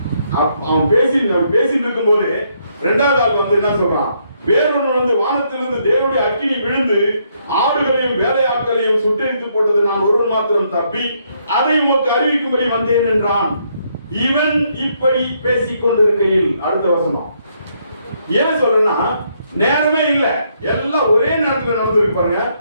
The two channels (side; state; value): both; inverted; correlation -0.73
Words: அவன் பேசிட்டு இருக்கும் போது 2வது ஆள் வந்து என்ன சொல்றான்? வேறொன்று வந்து வானத்திலிருந்து தேவனுடைய அக்கினி விழுந்து ஆடுகளையும் வேலையாட்களையும் சுட்டெரித்து போட்டது. நான் ஒருவன் மாத்திரம் தப்பி அதை உமக்கு அறிவிக்கும்படி வந்தேன் என்றான். இவன் இப்படி பேசிக் கொண்டிருக்கையில், அடுத்த வசனம் ஏன் சொல்றேன்னா, நேரமே இல்ல, எல்லாம் ஒரே நேரத்தில் நடந்திருக்கு. பாருங்க,